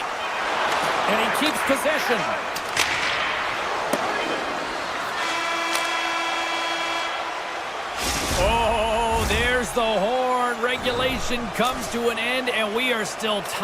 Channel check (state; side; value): identical; both; correlation 1.00